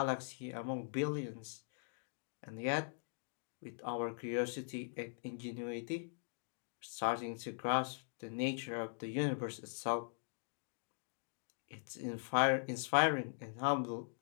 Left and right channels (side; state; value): right; silent; digital silence